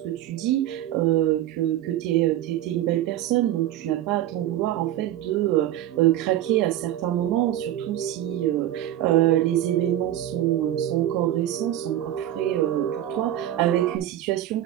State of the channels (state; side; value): quieter; left; 12.8 dB